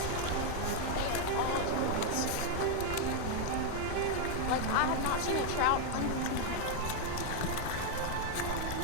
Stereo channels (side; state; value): both; different; correlation 0.00